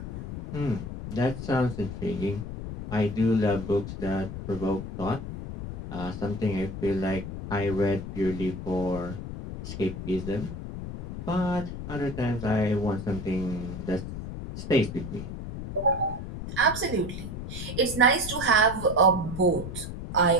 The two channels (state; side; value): noise; left; rumble, 8 dB below the sound